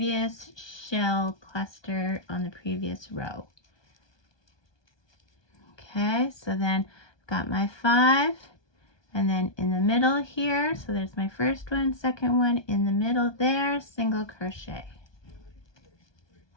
shell cluster on the previous row. Okay, so then I've got my 5, and then in the middle here, so there's my first one, second one, in the middle there, single crochet.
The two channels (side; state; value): right; late; 1.2 ms